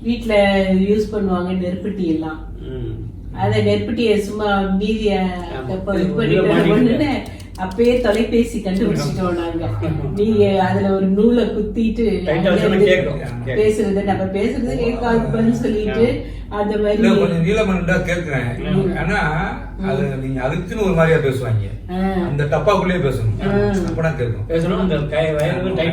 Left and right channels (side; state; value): both; identical; correlation 1.00